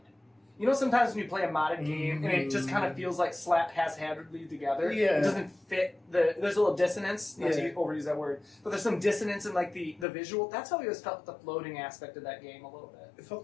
You know, sometimes when you play a modded game, and it just kind of feels like slap haphazardly together. Yeah. It doesn't fit there's a little dissonance, not to overuse that word, but there's some dissonance in, like, the visual. That's how I always felt with the floating aspect of that game a little bit. It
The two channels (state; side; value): drops out; right; at 10.1 s